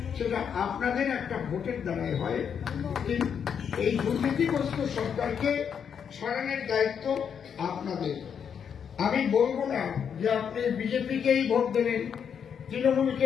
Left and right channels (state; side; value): quieter; right; 7.5 dB